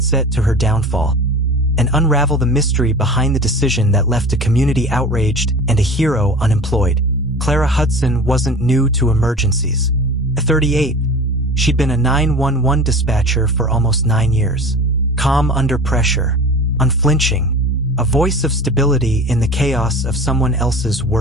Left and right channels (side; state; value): both; normal; correlation 0.37